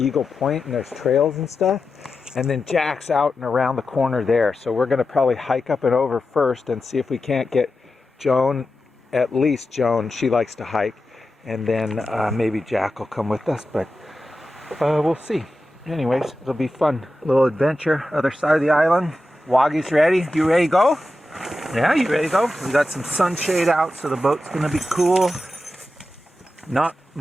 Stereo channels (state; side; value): normal; both; correlation 0.91